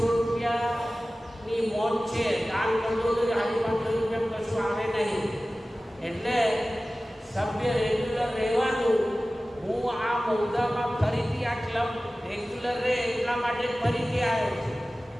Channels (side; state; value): both; normal; correlation 0.97